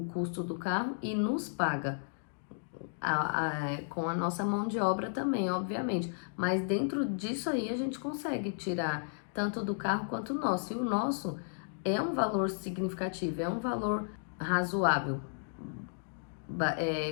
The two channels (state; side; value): silent; right; digital silence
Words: custo do carro, e nos paga com a nossa mão de obra também, obviamente. Mas dentro disso aí a gente consegue tirar tanto do carro quanto o nosso. E o nosso é um valor significativo, é um valor razoável,